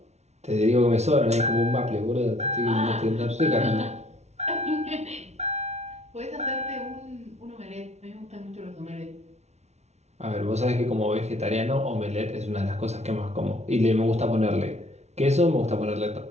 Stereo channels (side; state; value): left; late; 0.32 ms